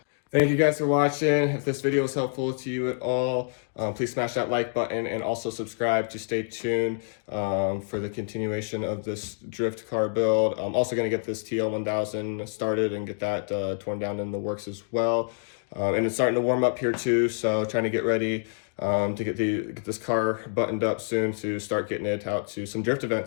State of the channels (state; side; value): silent; right; digital silence